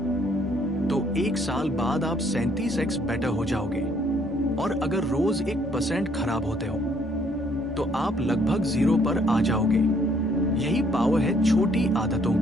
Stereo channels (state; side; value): normal; both; correlation 0.66